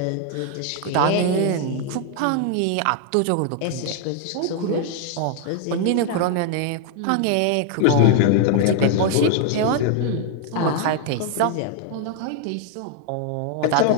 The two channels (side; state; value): both; different; correlation 0.00